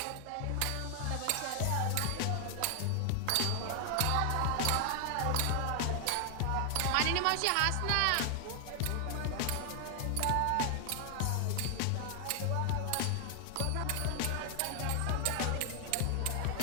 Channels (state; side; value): different; both; correlation 0.00